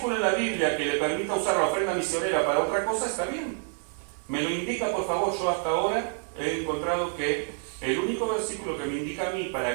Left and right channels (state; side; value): silent; left; 59 dB below the other